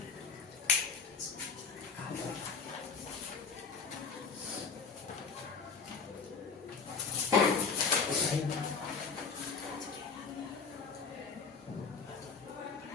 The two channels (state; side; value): quieter; right; 5.3 dB